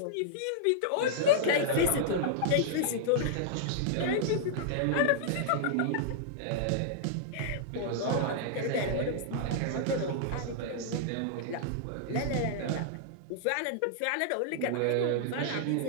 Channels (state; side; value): different; both; correlation -0.01